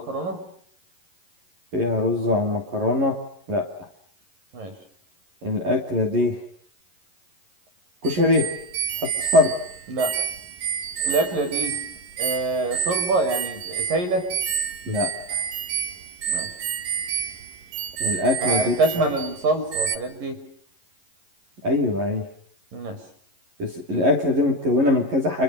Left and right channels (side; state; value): left; late; 11 ms